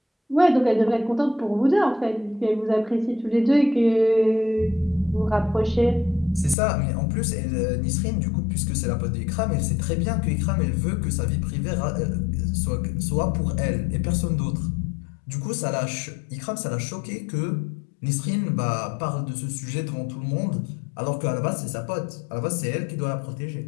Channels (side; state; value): right; drops out; at 6.6 s